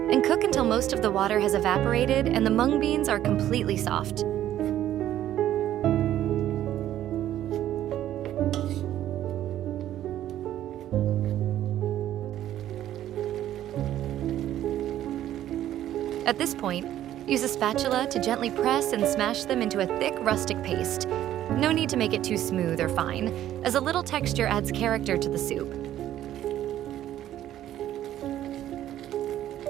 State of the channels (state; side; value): quieter; left; 12.3 dB